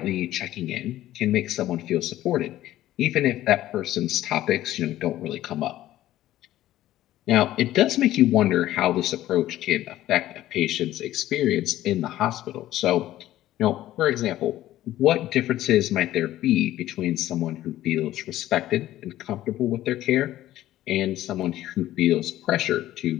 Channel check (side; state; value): right; quieter; 14.2 dB